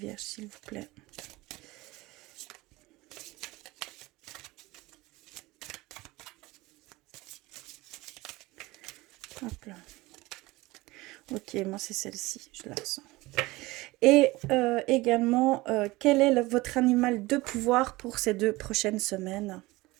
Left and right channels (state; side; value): quieter; left; 20.7 dB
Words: s'il vous plaît. Hop là. Ok, moi, c'est celle-ci, je la ressens. Et également, quel est votre animal de pouvoir pour ces 2 prochaines semaines?